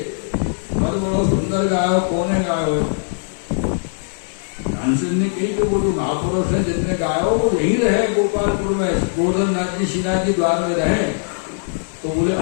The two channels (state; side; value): silent; right; digital silence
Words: बहुत बड़ा सुंदर गायो, कौन गायो? तानसेन ने कही कि वो जो महापुरुष है जिसने गायो वो यही रहे गोपालपुर में, गोवर्धन नाथ जी श्रीनाथ जी द्वार में रहे। तो बोले